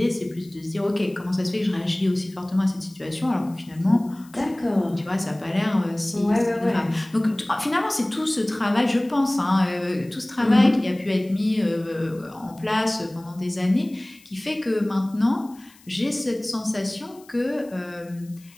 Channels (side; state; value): left; noise; hiss, 26 dB below the sound